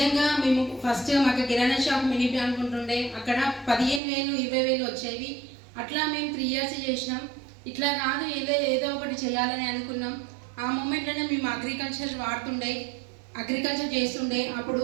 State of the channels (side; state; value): left; drops out; at 4.0 s